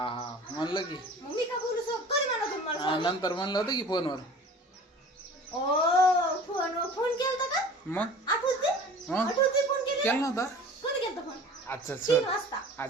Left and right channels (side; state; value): both; normal; correlation 0.43